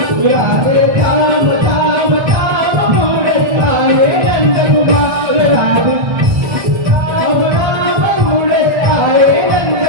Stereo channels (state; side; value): late; left; 1.3 ms